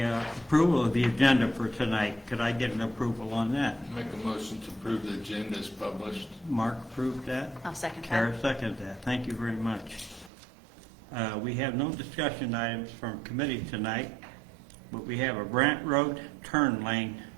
of the agenda for tonight. Could I get an approval on that? Make a motion to approve the agenda as published. Mark approved that. I'll second Kara that. seconded that. Thank you very much. We have no discussion items from committee tonight, but we have a Brant Road turn lane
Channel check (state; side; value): drops out; left; at 10.3 s